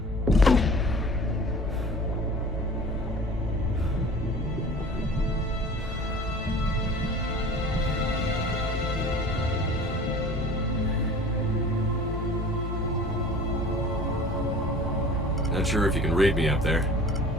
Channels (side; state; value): both; normal; correlation 0.43